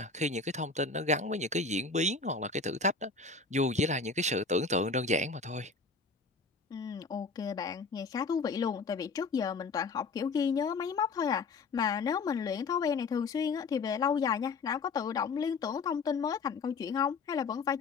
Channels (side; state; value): right; quieter; 4.3 dB